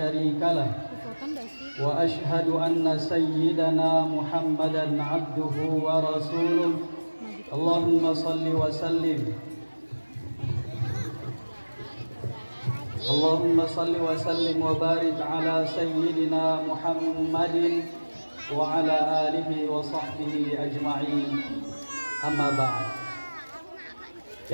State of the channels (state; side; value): inverted; both; correlation -1.00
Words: lah wa ashhadu anna sayyidana Muhammadan abduhu wa rasuluh. Allahumma salli wa sallim wa barik ala sayyidina Muhammadin wa ala alihi wa sahbihi ajma'in. Amma ba'd.